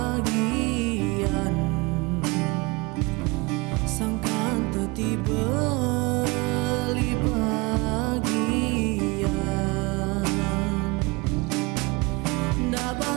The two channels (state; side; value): quieter; left; 25.3 dB